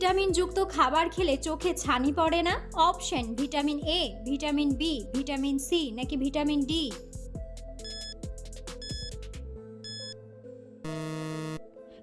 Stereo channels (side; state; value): both; identical; correlation 1.00